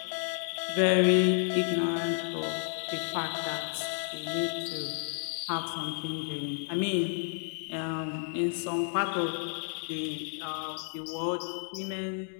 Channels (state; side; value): silent; right; digital silence